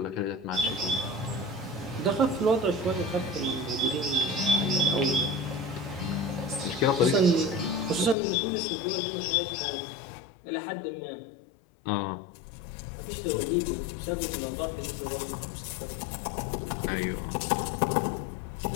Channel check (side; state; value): right; drops out; at 8.2 s